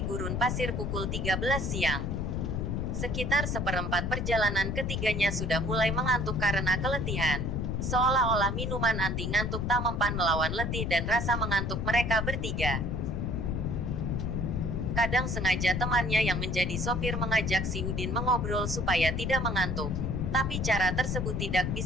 gurun pasir pukul 13 siang. Sekitar seperempat perjalanan ketiganya sudah mulai mengantuk karena keletihan. Seolah-olah minuman anti ngantuk tak mempan melawan letih dan rasa mengantuk mereka bertiga. Kadang sengaja temannya yang menjadi sopir mengajak si Udin mengobrol supaya tidak mengantuk. Tapi cara tersebut tidak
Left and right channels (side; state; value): left; noise; rumble, 1 dB below the sound